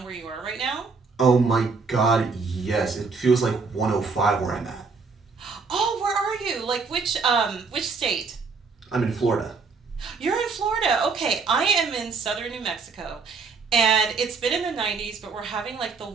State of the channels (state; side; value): quieter; left; 4.8 dB